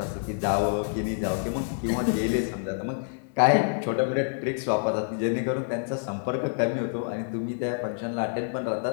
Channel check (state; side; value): silent; right; 58 dB below the other